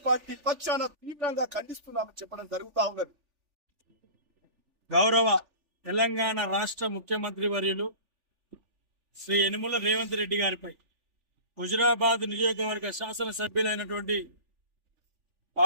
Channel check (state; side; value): late; left; 3.4 ms